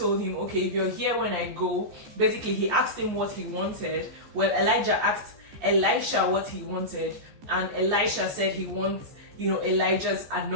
him, okay, if you're here when I go. Basically he asked him what he wanted. Well, Elijah asked Elisha what he wanted, and Elisha said he wants, you know, Elijah's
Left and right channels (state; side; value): late; left; 14 ms